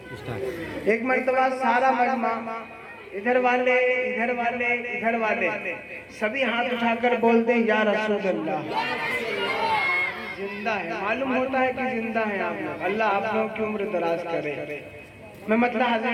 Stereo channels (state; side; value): identical; both; correlation 1.00